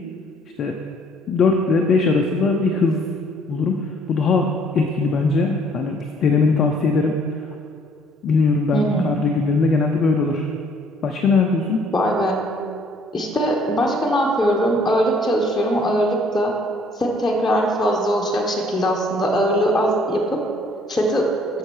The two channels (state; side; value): normal; both; correlation 0.61